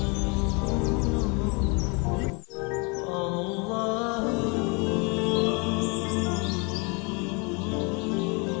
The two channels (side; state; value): right; quieter; 31.6 dB